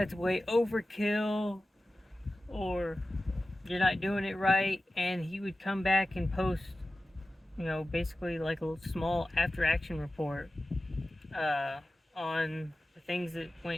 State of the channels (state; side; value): normal; both; correlation 0.95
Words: way overkill, or you're not doing it right. And he would come back and post, basically like a small after action report on the things that